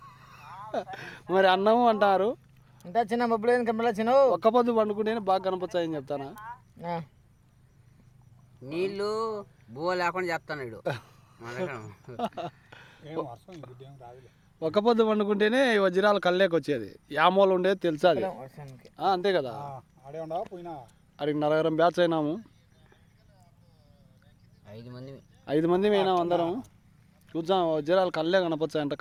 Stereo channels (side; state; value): both; identical; correlation 1.00